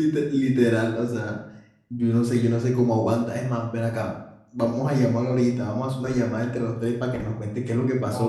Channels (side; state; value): both; identical; correlation 1.00